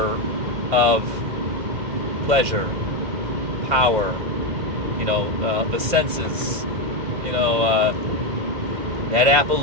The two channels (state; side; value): late; left; 2.1 ms